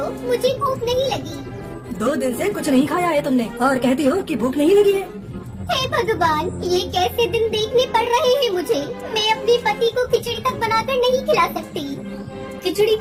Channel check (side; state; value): both; identical; correlation 1.00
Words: मुझे भूख नहीं लगी। 2 दिन से कुछ नहीं खाया है तुमने और कहती हो कि भूख नहीं लगी है। हे भगवान, ये कैसे दिन देखने पड़ रहे हैं मुझे। मैं अपने पति को खिचड़ी तक बनाकर नहीं खिला सकती। खिचड़ी